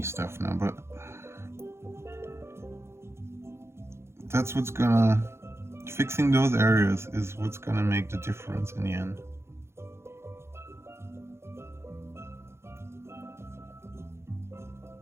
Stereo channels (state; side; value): late; left; 0.13 ms